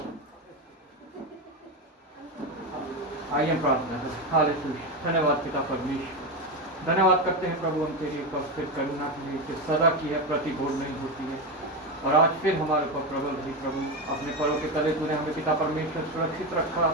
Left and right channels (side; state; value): both; normal; correlation 0.14